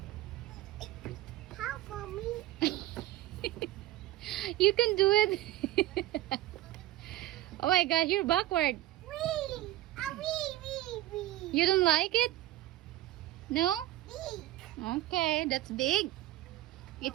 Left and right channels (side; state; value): left; quieter; 15.8 dB